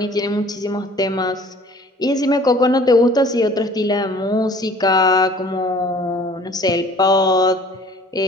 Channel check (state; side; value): normal; both; correlation 0.51